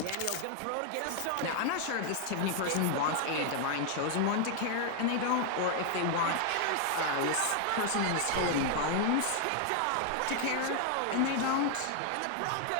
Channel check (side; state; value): both; different; correlation 0.00